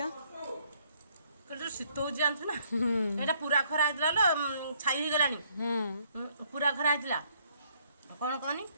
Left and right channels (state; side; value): inverted; both; correlation -0.67